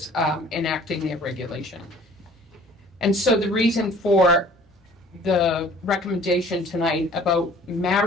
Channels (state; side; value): normal; both; correlation 0.52